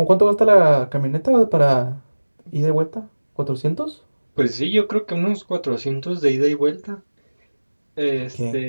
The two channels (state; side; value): inverted; both; correlation -1.00